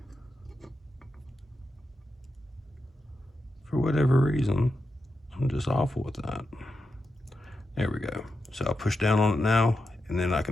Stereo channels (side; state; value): both; normal; correlation 0.88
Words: For whatever reason, I'm just awful with that. There we go. So I'll push down on it now, and then I